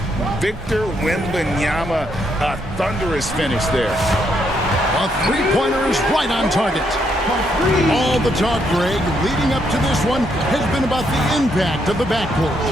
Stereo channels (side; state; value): both; normal; correlation 0.75